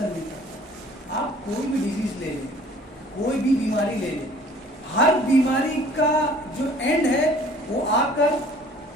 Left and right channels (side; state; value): both; normal; correlation 0.52